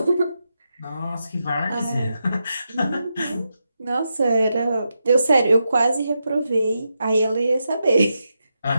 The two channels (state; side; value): inverted; both; correlation -0.86